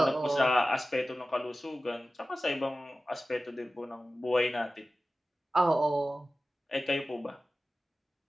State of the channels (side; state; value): both; normal; correlation 0.95